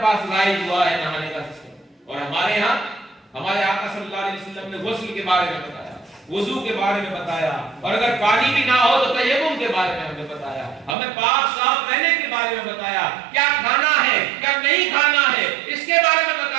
پاس رائج ہوا ہے نہانے کا سسٹم. اور ہمارے ہاں ہمارے آقا صلی اللہ علیہ وسلم نے غسل کے بارے میں بتایا، وضو کے بارے میں بتایا، اور اگر پانی بھی نہ ہو تو تیمم کے بارے میں ہمیں بتایا، ہمیں پاک صاف رہنے کے بارے میں بتایا، کیا کھانا ہے کیا نہیں کھانا ہے اس کے بارے میں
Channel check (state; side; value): drops out; left; at 11.0 s